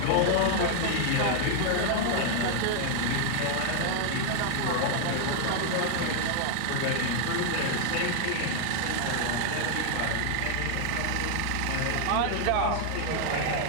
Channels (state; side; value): different; both; correlation 0.00